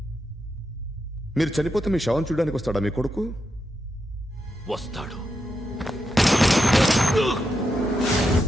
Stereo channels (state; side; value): normal; both; correlation 0.85